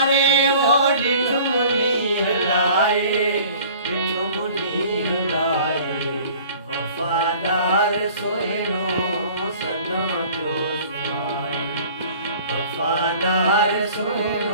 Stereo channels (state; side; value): inverted; both; correlation -0.48